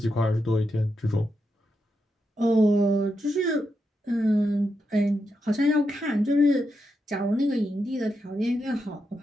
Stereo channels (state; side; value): normal; both; correlation 0.85